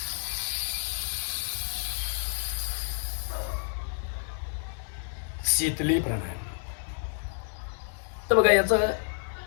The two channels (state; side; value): silent; right; 58 dB below the other